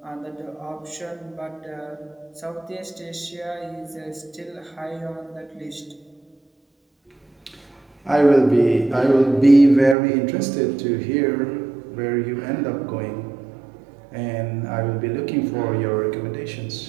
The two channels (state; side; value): drops out; left; at 10.0 s